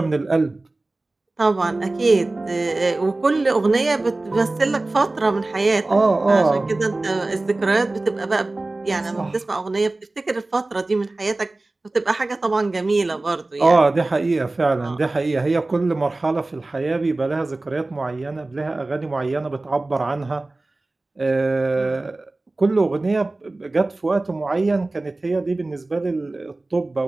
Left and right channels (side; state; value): left; quieter; 3.0 dB